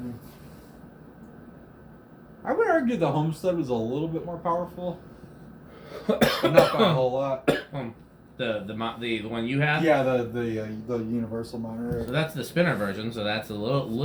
I would argue the Homestead was a little bit more powerful, but not by a whole lot. The one you have? Yeah, the Universal Monterey. So that's the spinner version. So that's a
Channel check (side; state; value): both; identical; correlation 1.00